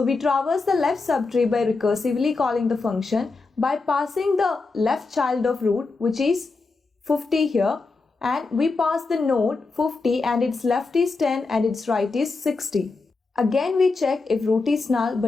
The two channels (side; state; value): right; quieter; 3.9 dB